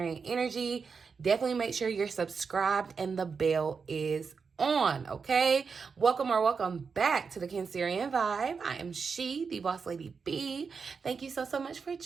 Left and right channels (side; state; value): left; quieter; 5.4 dB